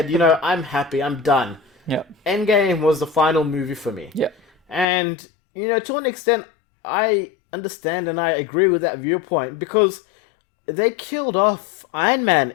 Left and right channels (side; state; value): right; drops out; at 4.9 s